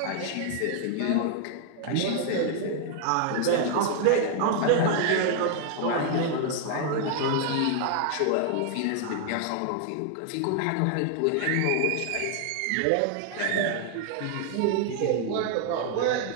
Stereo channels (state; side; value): different; both; correlation 0.00